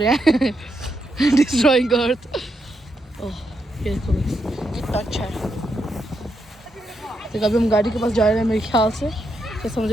हैं डिस्ट्रॉइंग अर्थ। ओह ये देखो कितना अच्छा है। तो अभी हम गाड़ी के पास जा रहे हैं मेरे ख्याल से, जैसा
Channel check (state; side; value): normal; both; correlation 0.82